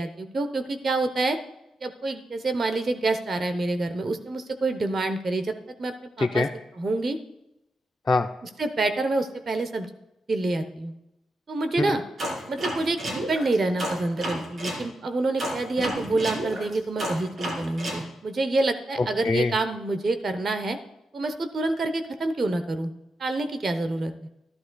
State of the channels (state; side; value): normal; both; correlation 0.86